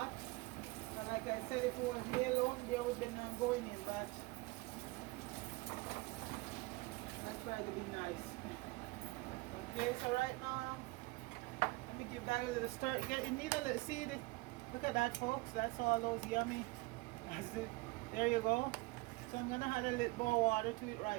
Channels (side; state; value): left; quieter; 23.5 dB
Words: But like I said, if it was real long, they would be not going in, but I try to be nice. Okay, so right now, let me give that a little stir. You need a little, see, look at that, folks. That's all those yummy. There you go. So I'm going to add a little more water to it